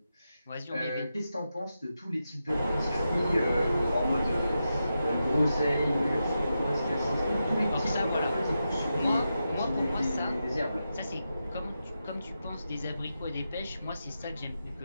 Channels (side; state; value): both; inverted; correlation -0.88